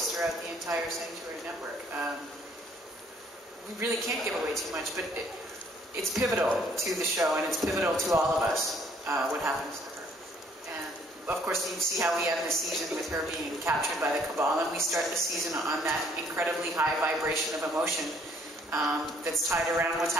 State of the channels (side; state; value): both; normal; correlation 0.63